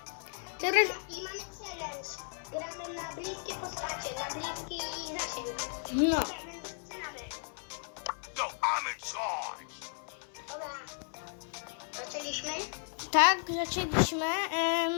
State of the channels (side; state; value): right; silent; 55 dB below the other